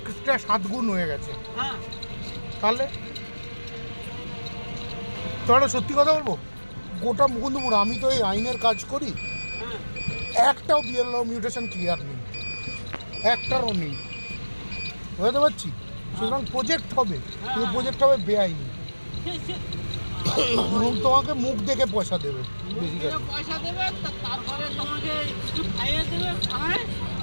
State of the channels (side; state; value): both; inverted; correlation -1.00